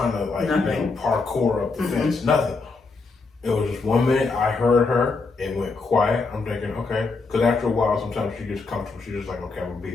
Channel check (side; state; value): right; quieter; 4.1 dB